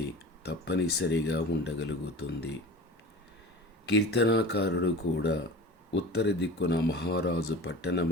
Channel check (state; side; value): normal; both; correlation 0.36